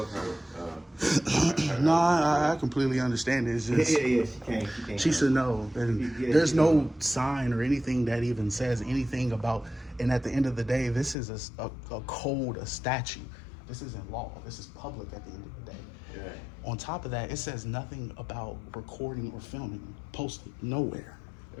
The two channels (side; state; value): right; drops out; at 11.2 s